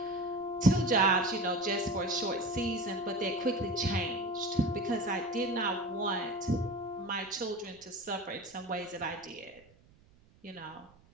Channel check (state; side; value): noise; right; rumble, 28 dB below the sound